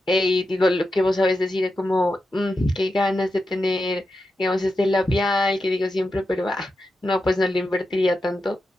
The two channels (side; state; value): both; normal; correlation 0.89